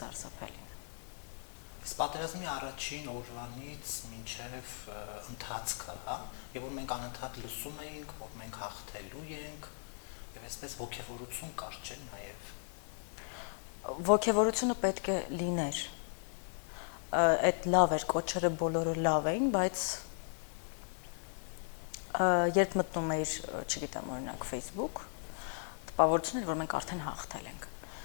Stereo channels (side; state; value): right; silent; digital silence